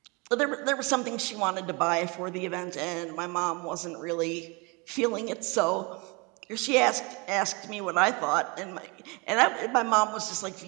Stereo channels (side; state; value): left; quieter; 29.0 dB